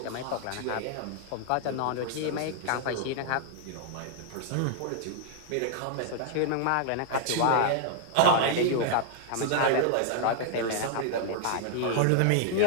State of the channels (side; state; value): both; different; correlation 0.00